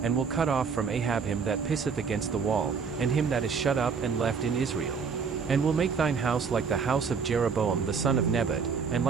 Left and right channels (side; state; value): left; quieter; 5.9 dB